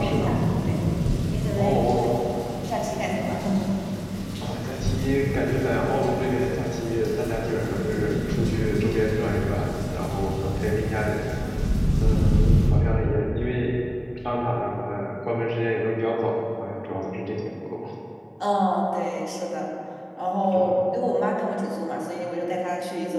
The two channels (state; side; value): identical; both; correlation 1.00